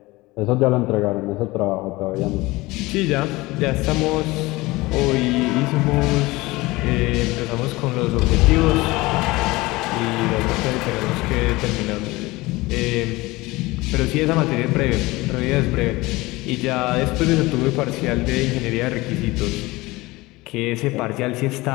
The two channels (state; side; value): quieter; right; 21.0 dB